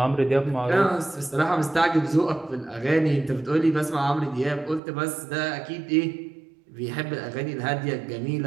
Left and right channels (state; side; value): drops out; left; at 4.8 s